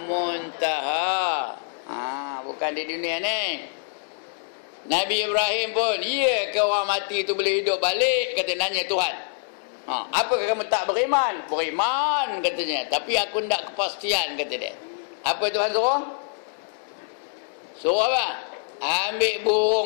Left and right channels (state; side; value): silent; right; 62 dB below the other